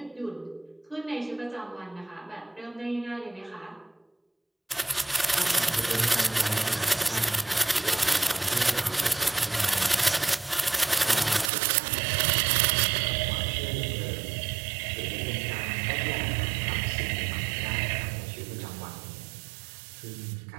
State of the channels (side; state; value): left; drops out; at 11.5 s